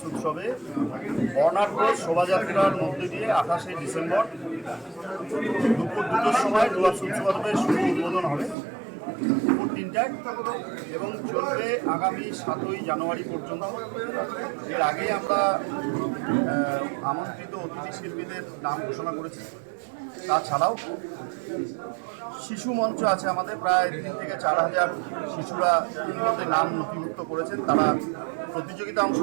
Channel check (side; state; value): left; drops out; at 8.6 s